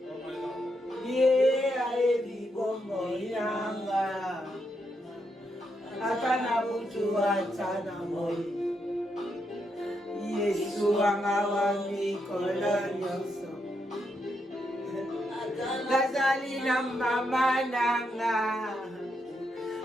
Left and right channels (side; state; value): both; normal; correlation 0.81